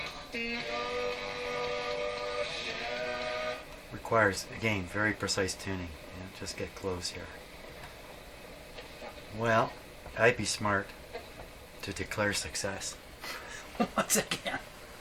Requires, again, very precise tuning. Just get close here. Well, I'd be smart to declare success once again.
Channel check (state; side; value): identical; both; correlation 1.00